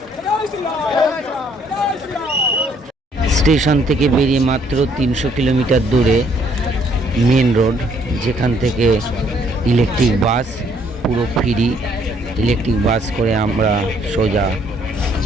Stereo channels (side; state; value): both; normal; correlation 0.66